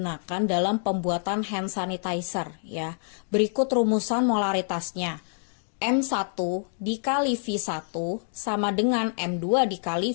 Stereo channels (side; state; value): right; silent; digital silence